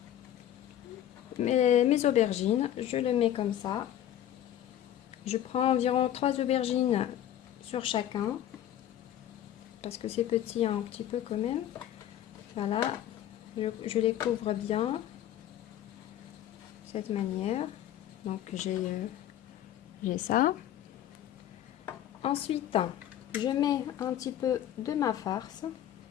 mes aubergines. Je le mets comme ça. Je prends environ 3 aubergines sur chacun. Parce que c'est petit un petit peu quand même. Voilà. Je les couvre bien. De cette manière. Donc, j'ai ça. Ensuite, je mets un petit peu de ma farce.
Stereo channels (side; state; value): right; quieter; 11.5 dB